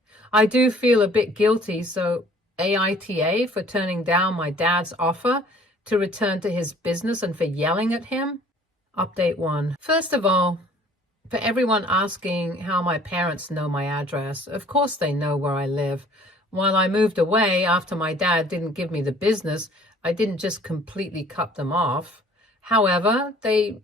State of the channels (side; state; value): both; normal; correlation 0.54